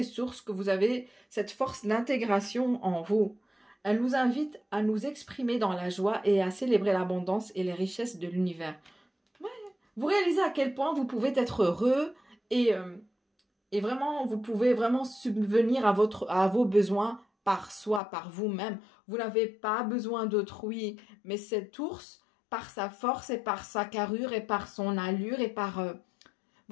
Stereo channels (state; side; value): drops out; right; at 18.0 s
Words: sources, que vous avez cette force d'intégration en vous. Elle nous invite à nous exprimer dans la joie et à célébrer l'abondance et les richesses de l'univers. Vous réalisez à quel point vous pouvez être heureux et vraiment, vous pouvez vraiment subvenir à vos besoins par soi, par vous-même. Vous n'avez pas besoin d'autrui, mais cet ours, par sa force et par sa carrure et par son allure et par...